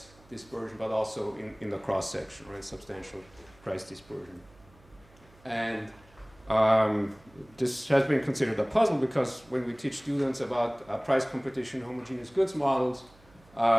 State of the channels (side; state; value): right; noise; hum, 27 dB below the sound